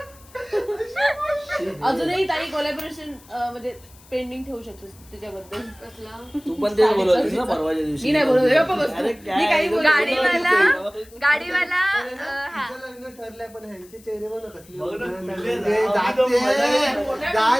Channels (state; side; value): noise; left; hiss, 25 dB below the sound